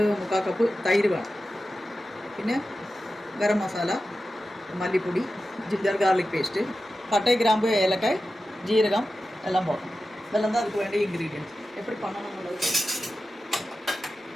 கப்பு தயிர் வேணும். പിന്നെ ഗരം മസാല, മല്ലിപ്പൊടി, ജിഞ്ചർ ഗാർലിക് പേസ്റ്റ്, പട്ടை, கிராம்பு, ஏலக்காய், ஜீரகம் எல்லாம் போடணும். இதெல்லாம் தான் அதுக்கு வேண்டிய இன்க்ரீடியன்ட்ஸ். எப்படி பண்ணணும்னுള്ളത്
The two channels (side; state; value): both; normal; correlation 0.93